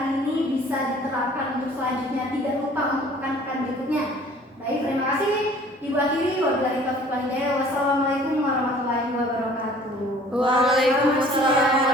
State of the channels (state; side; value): normal; both; correlation 0.51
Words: ini bisa diterapkan untuk selanjutnya. Tidak lupa untuk pekan-pekan berikutnya. Baik, terima kasih. Ibu akhiri. Wabillahi taufiq wal hidayah. Wassalamualaikum